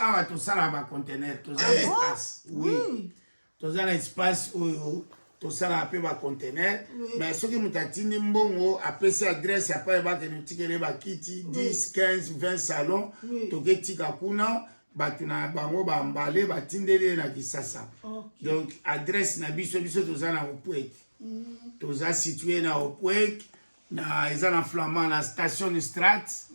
awa to sala ba conteneur to za espace. Oui. To za espace oyo to sala pe ba conteneur mais soki mutatini mbongo apesi adresse ya pa ba ke nutikele ba kiti 10 15 20 salons to ketika kuna batuna bango ba mbale batindele na Kisasa. Donc adresse na biso toza na Opwek. Toza situé na Opwek na ezana flamand na station Strat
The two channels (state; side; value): inverted; both; correlation -1.00